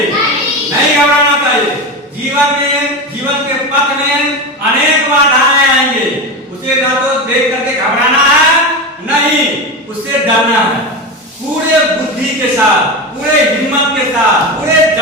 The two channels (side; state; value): both; normal; correlation 0.20